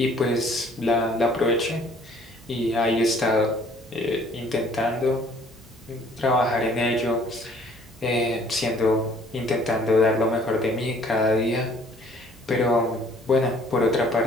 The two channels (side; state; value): both; normal; correlation 0.57